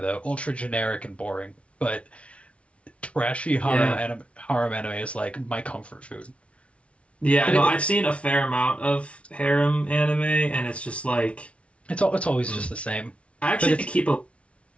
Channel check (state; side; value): late; right; 0.062 ms